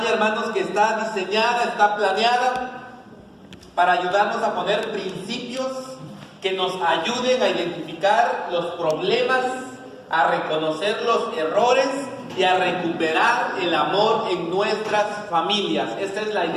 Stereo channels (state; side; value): identical; both; correlation 1.00